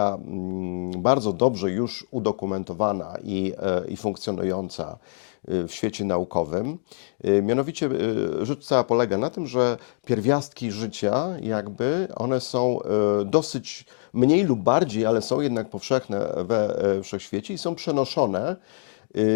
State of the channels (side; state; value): right; silent; digital silence